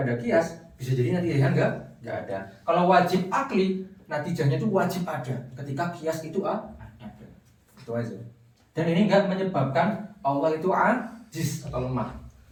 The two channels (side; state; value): both; identical; correlation 1.00